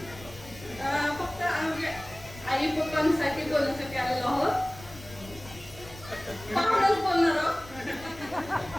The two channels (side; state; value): left; noise; rumble, 18 dB below the sound